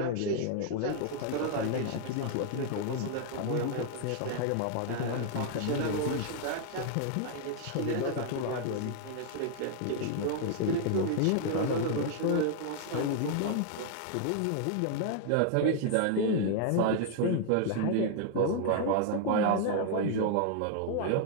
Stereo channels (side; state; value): both; different; correlation 0.00